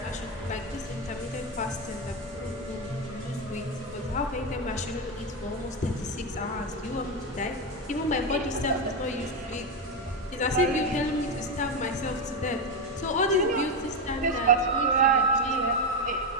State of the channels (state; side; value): normal; both; correlation 0.10